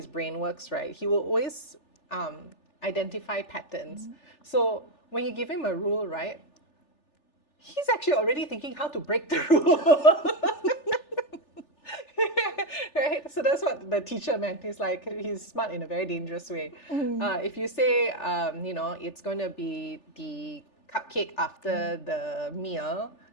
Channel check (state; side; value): late; right; 3.4 ms